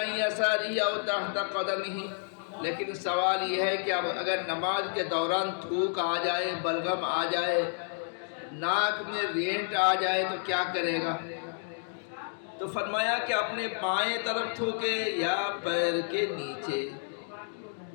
يَسَارِهِ أَوْ تَحْتَ قَدَمِهِ، لیکن سوال یہ ہے کہ اب اگر نماز کے دوران تھوک آ جائے، بلغم آ جائے، ناک میں رینٹ آ جائے تو کیا کرے گا؟ تو فرمایا کہ اپنے بائیں طرف تھوکے یا پیر کے نیچے۔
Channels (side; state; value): right; silent; digital silence